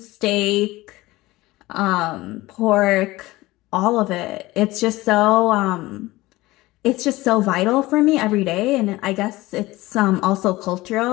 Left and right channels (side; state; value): right; quieter; 19.2 dB